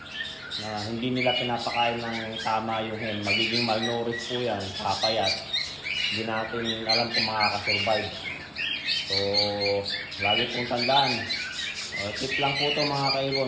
hindi nila pinapakain ng tama yung hen. Magiging malnourished po yan, papayat. Hindi natin alam kung makakasurvive. So lagi pong tandaan, tip lang po ito mga kaibon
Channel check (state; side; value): identical; both; correlation 1.00